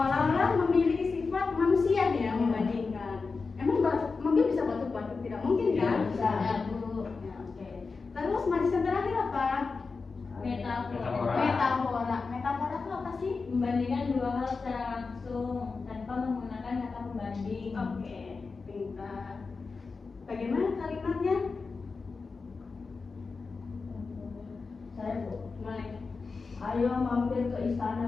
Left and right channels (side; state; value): right; quieter; 4.4 dB